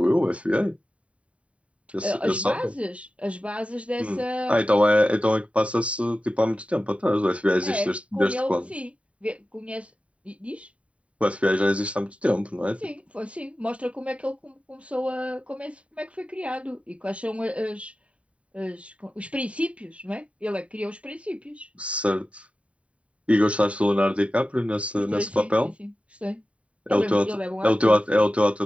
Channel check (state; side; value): late; left; 0.064 ms